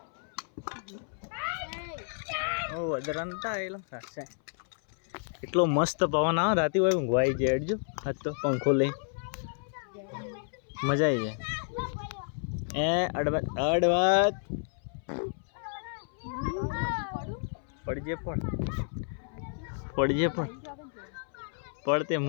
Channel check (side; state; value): right; silent; 57 dB below the other